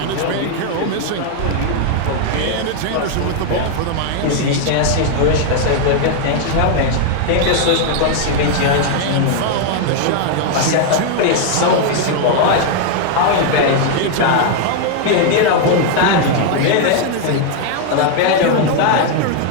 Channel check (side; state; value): both; different; correlation 0.00